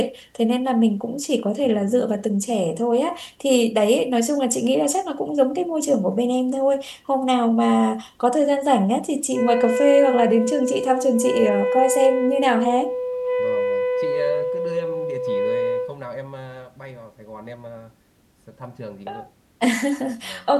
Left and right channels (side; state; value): both; identical; correlation 1.00